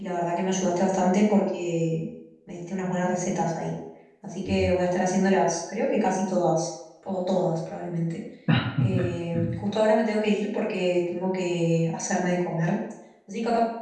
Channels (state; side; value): identical; both; correlation 1.00